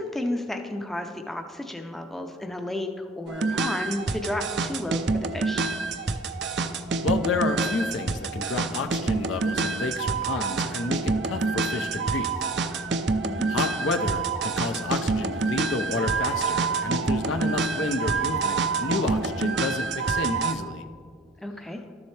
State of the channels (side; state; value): both; normal; correlation 0.44